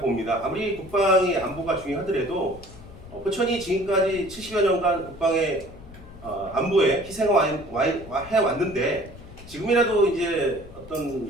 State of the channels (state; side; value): noise; left; rumble, 18 dB below the sound